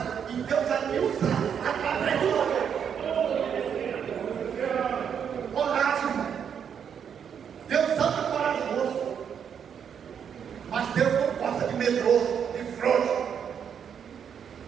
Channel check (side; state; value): left; quieter; 7.8 dB